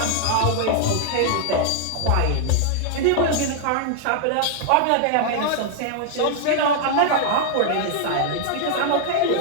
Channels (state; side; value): different; both; correlation -0.01